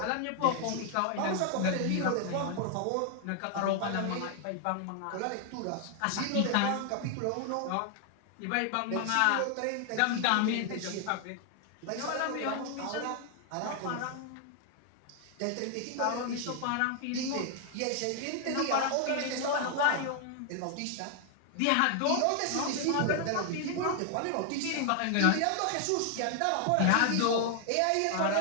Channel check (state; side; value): different; both; correlation 0.00